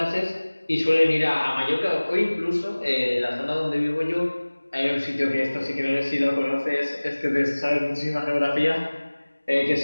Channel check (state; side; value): inverted; both; correlation -1.00